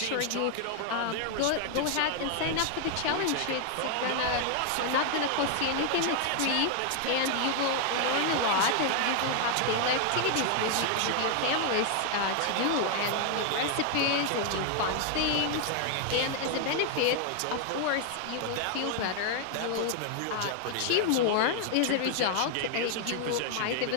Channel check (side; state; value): both; different; correlation 0.00